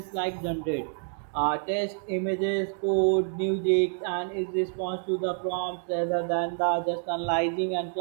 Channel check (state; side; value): silent; left; digital silence